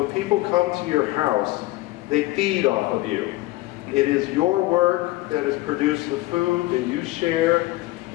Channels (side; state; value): right; quieter; 18.6 dB